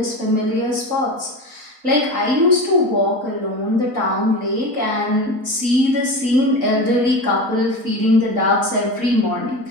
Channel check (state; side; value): late; left; 4.2 ms